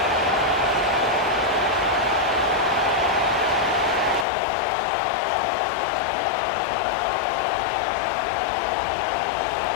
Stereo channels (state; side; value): drops out; right; at 4.2 s